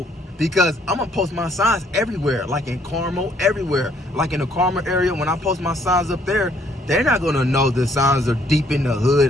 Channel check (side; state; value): both; normal; correlation 0.65